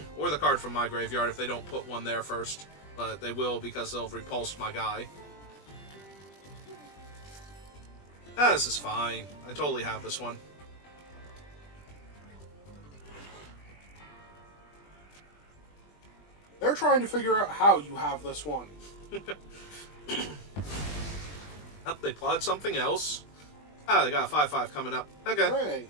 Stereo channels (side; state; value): right; late; 20 ms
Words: Or the card from my graveyard if they don't put one there first. But they will because they'll repulse my guy. Ah, this is fine. I totally have this one. They're trying to figure out how you have this one. Oh, they plotted something else. Ah, they got a 5/5 coming up. Okay, Hooray.